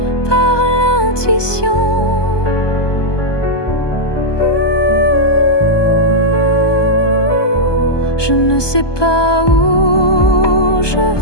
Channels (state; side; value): late; right; 1.2 ms